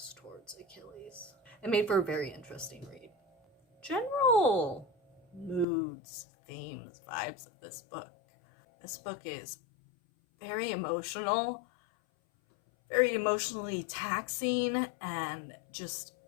towards Achilles. It made for a very interesting read. General moods, themes, vibes of this book. This book is very emotional, very emotionally taxing, and just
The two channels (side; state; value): right; drops out; at 5.7 s